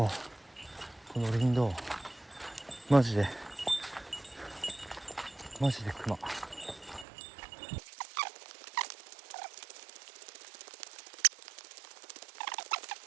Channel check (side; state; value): left; drops out; at 7.1 s